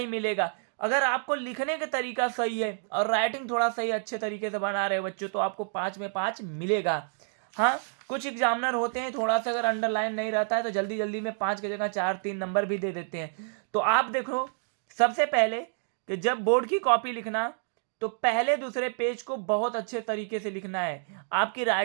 मिलेगा। अगर आपको लिखने का तरीका सही है और राइटिंग थोड़ा सही अच्छे तरीके से बना रहे हो बच्चों, तो आपको 5 में 5 मिलेगा। हाँ, कुछ एग्जामिनर होते हैं थोड़ा सा अगर अंडरलाइन नहीं रहता है तो जल्दी जल्दी में 5 की जगह 4-3 नंबर भी दे देते हैं। तो आप देखो सबसे पहले कि जब बोर्ड की कॉपी लिखना तो पहले दूसरे पेज को बहुत अच्छे तरीके से लिखना है, आपकी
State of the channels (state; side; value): silent; left; digital silence